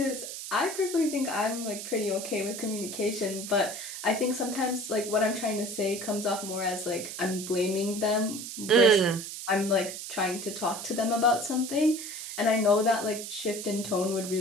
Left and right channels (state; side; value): noise; right; hiss, 8 dB below the sound